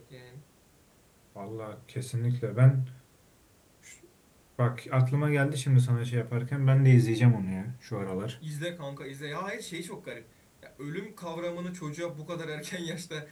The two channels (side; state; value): both; identical; correlation 1.00